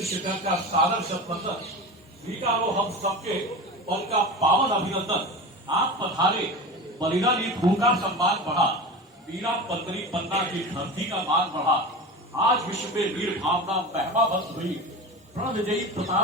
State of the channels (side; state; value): both; normal; correlation 0.29